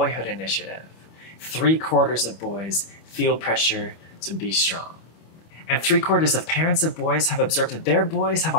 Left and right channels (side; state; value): right; late; 25 ms